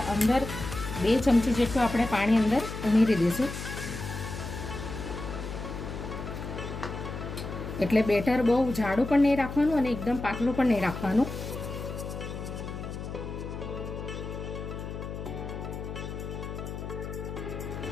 અંદર 2 ચમચી જેટલું આપણે પાણી અંદર ઉમેરી દઈશું. એટલે બેટર બહુ જાડું પણ નહીં રાખવાનું અને એકદમ પાતળું પણ નહીં રાખવાનું.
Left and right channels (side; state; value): left; noise; hum, 7 dB below the sound